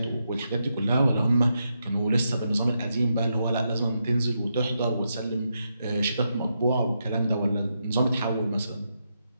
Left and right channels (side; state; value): both; inverted; correlation -0.83